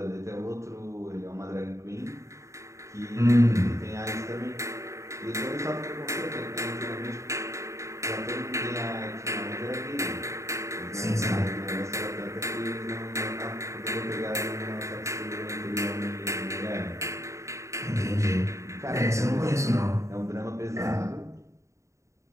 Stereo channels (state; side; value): late; left; 0.14 ms